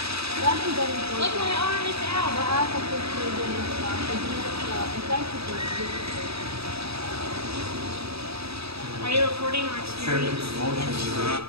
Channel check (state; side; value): late; left; 0.78 ms